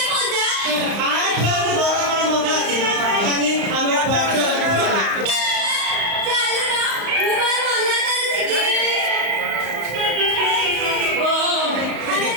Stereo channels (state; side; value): late; left; 35 ms